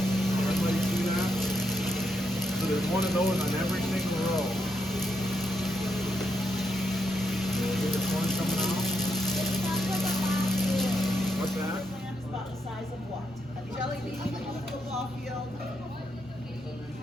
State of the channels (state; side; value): normal; both; correlation 0.80